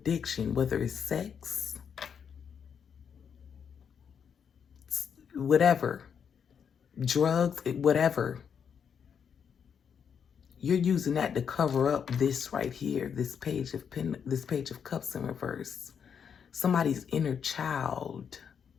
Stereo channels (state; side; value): quieter; right; 7.3 dB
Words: whether it's sex, whatever, drugs, whatever. You're using that to cover up this right here, this page of Cups in reverse. Somebody's inner child.